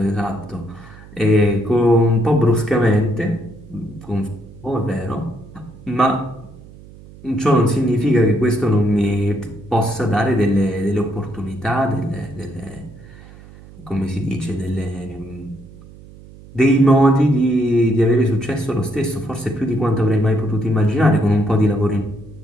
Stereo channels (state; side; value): noise; right; hum, 20 dB below the sound